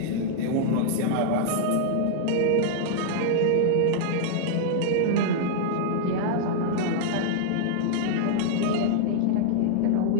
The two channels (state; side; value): different; both; correlation -0.01